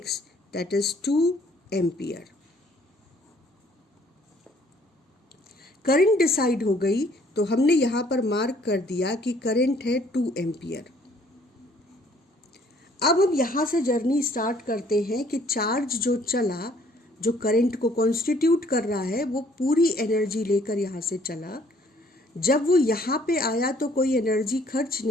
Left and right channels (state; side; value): normal; both; correlation 0.61